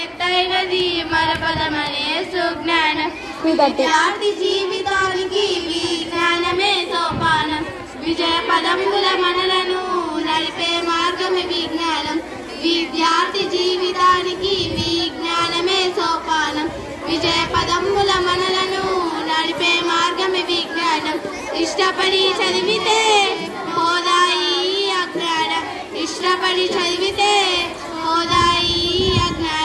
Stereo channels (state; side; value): identical; both; correlation 1.00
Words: మరపదమనే సుజ్ఞానం విద్యార్థి జీవితానికి విజ్ఞానమే సోపానం విజయ పదముల మనలను నడిపే మార్గమే విజ్ఞానం విద్యార్థి జీవితానికి విజ్ఞానమే సోపానం విజయ పదముల మనలను నడిపే మార్గమే విజ్ఞానం ఇష్టపడి చదివితే హోదాయి అజ్ఞానం ఇష్టపడి చదివితే హోదాయి